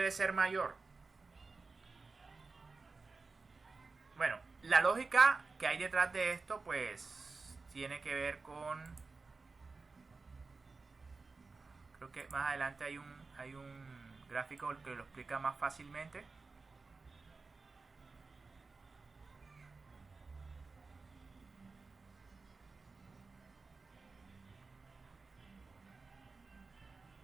ser mayor? Bueno, la lógica que hay detrás de esto pues tiene que ver con, creo que más adelante hay un gráfico que lo explica más fácilmente.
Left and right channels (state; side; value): quieter; left; 4.1 dB